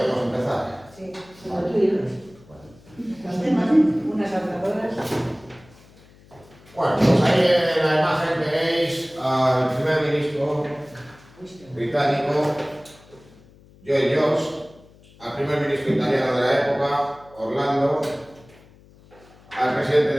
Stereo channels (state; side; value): noise; left; hum, 26 dB below the sound